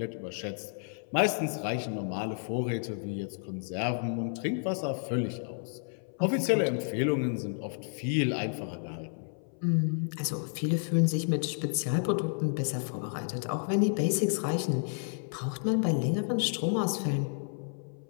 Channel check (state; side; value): silent; right; 57 dB below the other